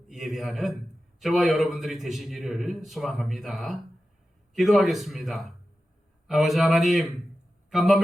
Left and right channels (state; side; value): normal; both; correlation 0.93